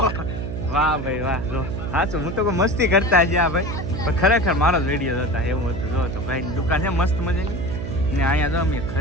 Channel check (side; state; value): right; noise; hum, 6 dB below the sound